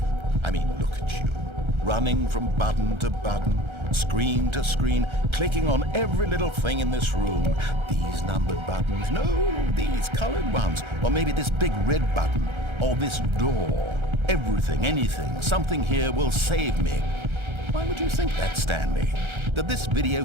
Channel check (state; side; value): late; left; 1.3 ms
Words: I mean, look at you. Running from button to button, screen to screen, clicking on every little thing in this room. These numbered buttons, no, these colored ones. Or maybe this big red button, or this door. Everything, anything, something here will save me. Why would you think that, Stanley? That this video